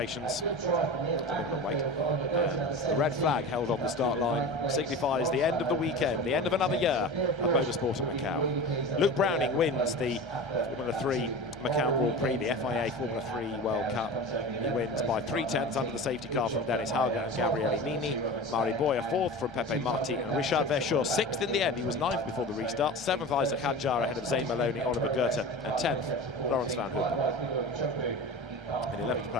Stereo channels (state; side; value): normal; both; correlation 0.31